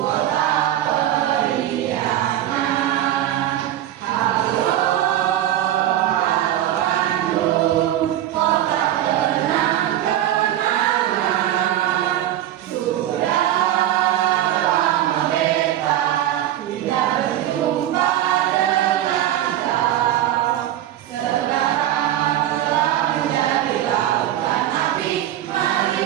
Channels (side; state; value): left; quieter; 12.5 dB